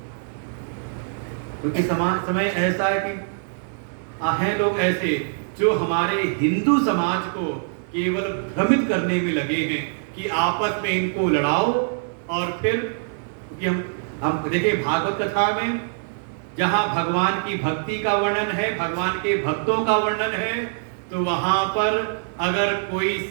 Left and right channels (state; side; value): silent; left; digital silence